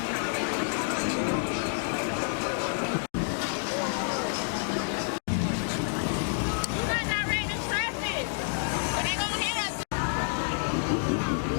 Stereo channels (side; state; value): right; silent; digital silence